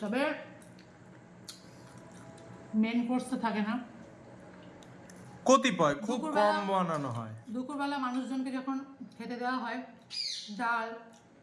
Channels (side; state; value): both; identical; correlation 1.00